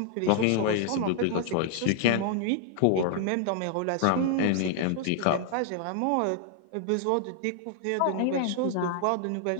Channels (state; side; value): different; both; correlation 0.00